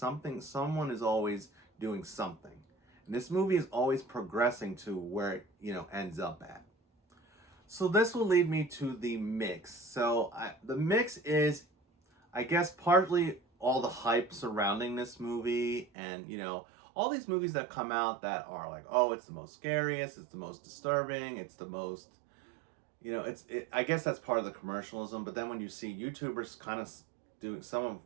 is always doing something. And this movie is always progressing to where it, ends up at. So this will lead me to the mix. So the mix is, I guess, partly all the hype surrounding this movie, and all these movies that come out that are like, oh, it's the most scariest, it's the most disturbing, it's the most, I guess that's part of the commercialism. But then when you see YouTubers kind of doing some of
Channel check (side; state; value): left; drops out; at 15.9 s